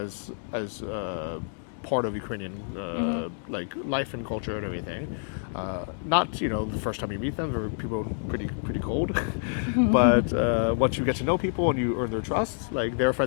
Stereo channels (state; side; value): silent; right; digital silence